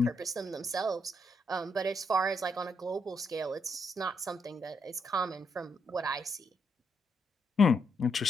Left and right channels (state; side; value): normal; both; correlation 0.77